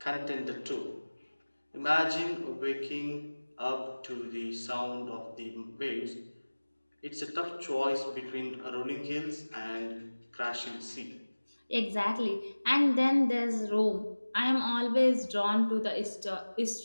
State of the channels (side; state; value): both; inverted; correlation -1.00